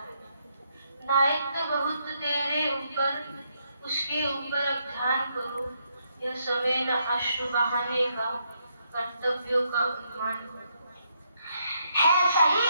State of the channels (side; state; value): both; inverted; correlation -0.76